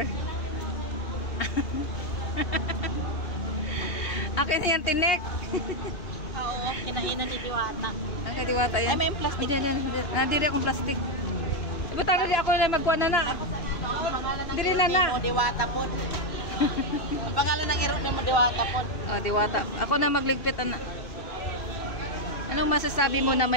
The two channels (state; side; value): late; right; 2.5 ms